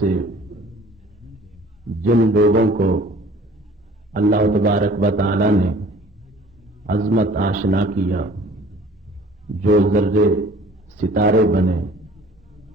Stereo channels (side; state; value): both; normal; correlation 0.50